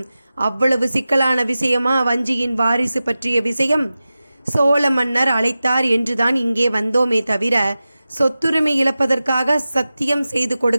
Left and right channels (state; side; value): inverted; both; correlation -0.95